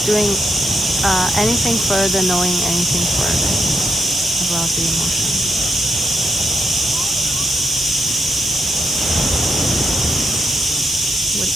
doing anything further, knowing anything further about the emotion? What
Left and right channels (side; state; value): both; normal; correlation 0.79